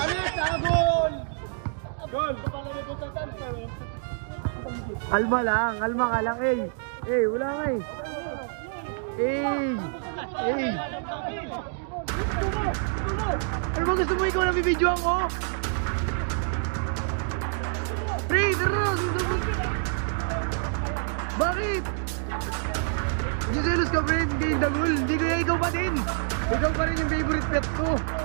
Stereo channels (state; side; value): silent; left; digital silence